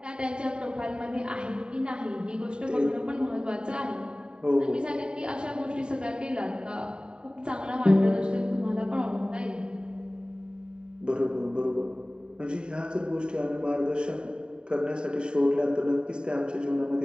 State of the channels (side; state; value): left; late; 0.049 ms